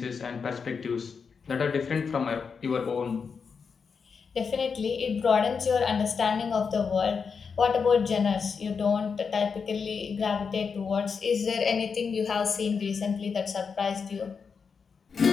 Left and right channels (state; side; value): quieter; right; 5.7 dB